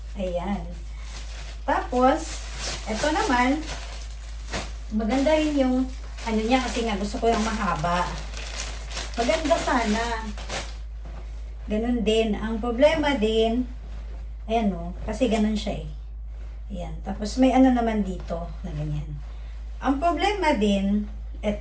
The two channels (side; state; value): both; identical; correlation 1.00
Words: Ayan. Tapos, ito naman, maganda rin yung niya kasi nga gusto ko yung mahaba. Maganda sana. Ganun din. Ang problema din, ayan kasi ganun siya eh. Ayan. Tapos may naman dito na ganyan. Ang problema din,